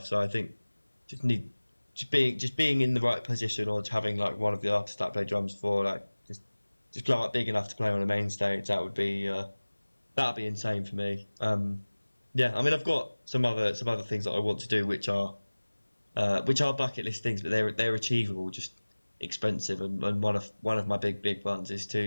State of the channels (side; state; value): both; inverted; correlation -1.00